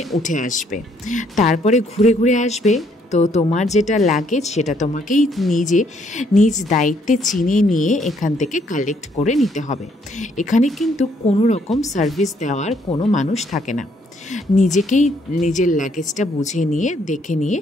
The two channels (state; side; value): normal; both; correlation 0.68